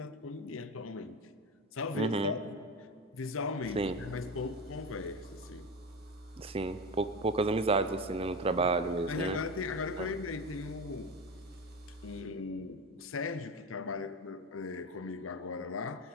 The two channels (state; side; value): normal; both; correlation 0.23